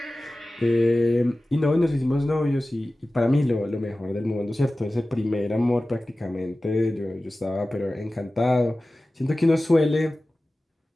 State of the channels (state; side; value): normal; both; correlation 0.96